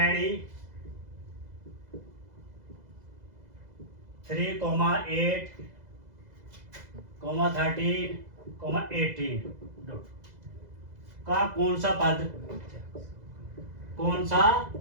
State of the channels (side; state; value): left; late; 2.0 ms